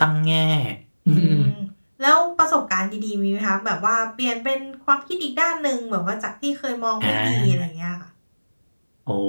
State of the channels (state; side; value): inverted; both; correlation -1.00